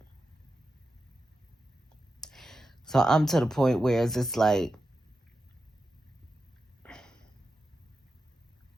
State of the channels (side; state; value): both; normal; correlation 0.90